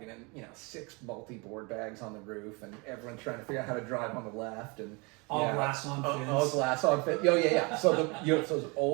and, you know, 6 multi-board bags on the roof, and everyone trying to figure out how to drive on the left, and All yeah, glass on fins. all glass on fin. Oh yeah. So it's those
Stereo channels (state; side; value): quieter; left; 29.1 dB